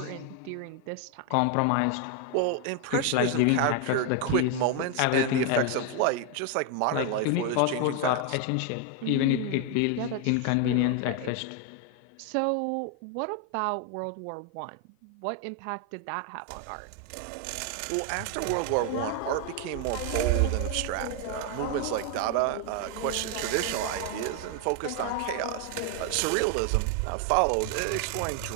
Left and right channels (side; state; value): both; different; correlation 0.01